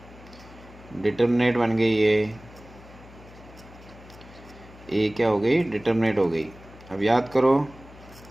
डिटर्मिनेंट बन गई है, ए क्या हो गई, डिटर्मिनेंट हो गई। अब याद करो,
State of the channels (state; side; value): noise; left; hum, 20 dB below the sound